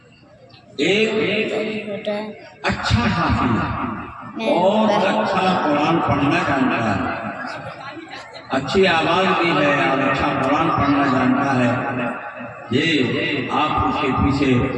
ایک اچھا حافظ اور اچھا قرآن پڑھنا جانتا ہے، اچھی آواز بھی ہے اور اچھا قرآن پڑھنا جانتا ہے. یہ آپ اس کے پیچھے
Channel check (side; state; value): both; identical; correlation 1.00